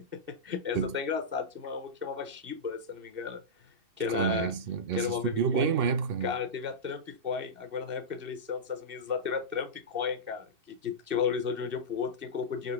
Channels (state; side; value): late; left; 2.6 ms